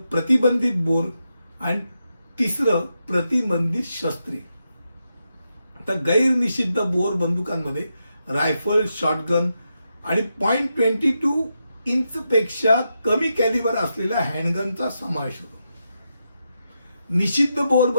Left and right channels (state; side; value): inverted; both; correlation -0.85